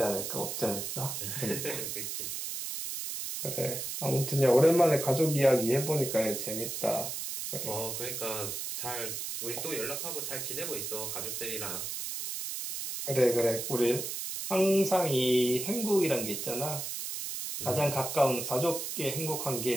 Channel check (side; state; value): right; noise; hiss, 5 dB below the sound